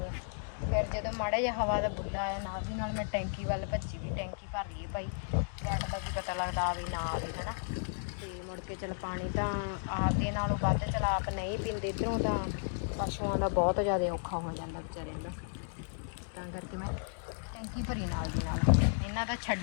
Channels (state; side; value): silent; right; digital silence